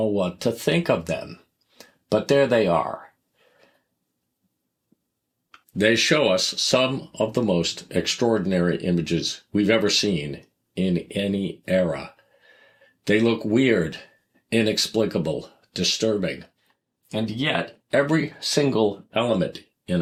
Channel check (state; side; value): identical; both; correlation 1.00